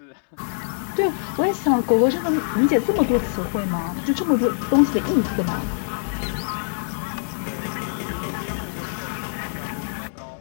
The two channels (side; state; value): right; silent; 63 dB below the other